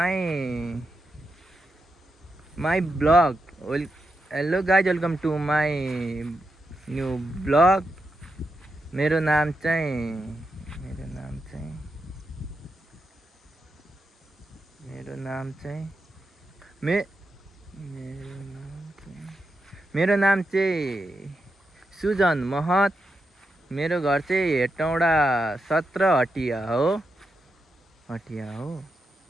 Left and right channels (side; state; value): both; normal; correlation 0.86